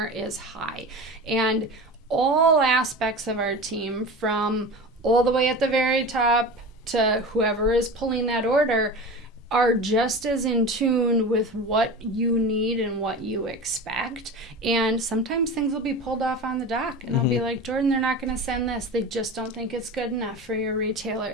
is high. And all aspects of our team, from all the way at the very top to whoever is pulling that order, are just as in tune with what you need and what you expect. And sometimes things will be pulled off on the dock, and I'll be like, Jordan, they're not going to send this. They just don't think it's good enough for your retailer.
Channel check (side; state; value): both; normal; correlation 0.31